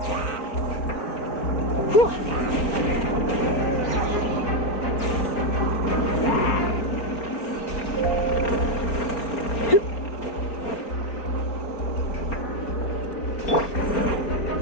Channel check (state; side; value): late; right; 4.4 ms